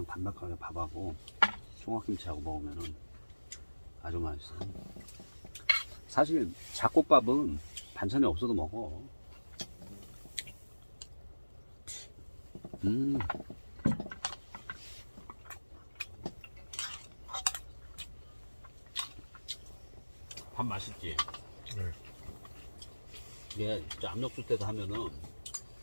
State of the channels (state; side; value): inverted; both; correlation -1.00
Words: 반박하게 밥하고 총각김치하고 먹으면은 아주 맛있어. 사실 잡곡밥은 반찬이 없어도 먹어. 밥 맛있지? 네. 이게 진짜 압력솥 때도 하면은